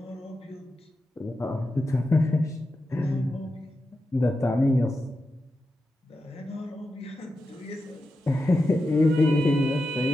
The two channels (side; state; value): both; normal; correlation 0.89